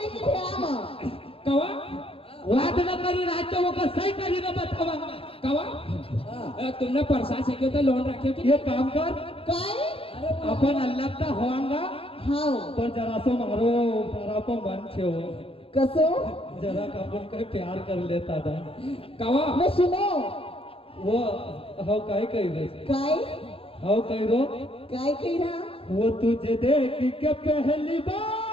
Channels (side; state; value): right; late; 0.27 ms